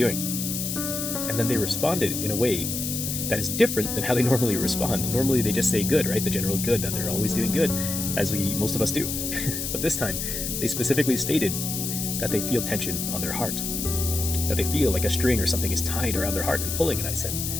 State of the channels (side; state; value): left; noise; hiss, 3 dB below the sound